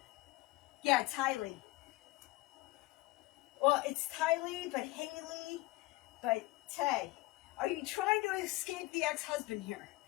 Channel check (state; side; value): quieter; right; 20.1 dB